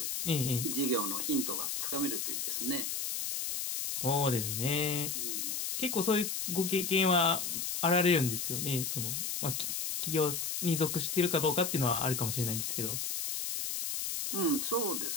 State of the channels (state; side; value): noise; left; hiss, 2 dB below the sound